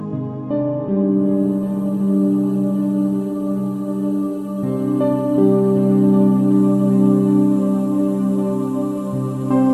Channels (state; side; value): identical; both; correlation 1.00